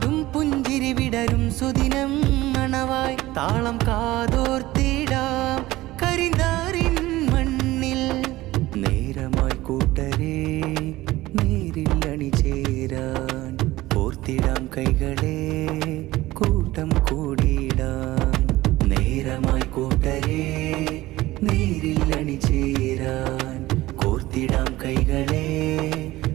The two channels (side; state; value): left; quieter; 17.6 dB